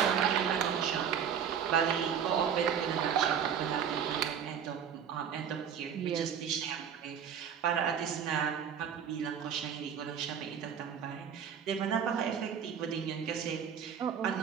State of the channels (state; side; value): quieter; left; 8.0 dB